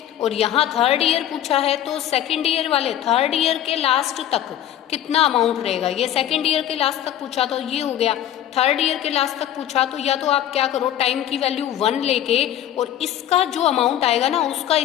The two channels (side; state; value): right; quieter; 11.5 dB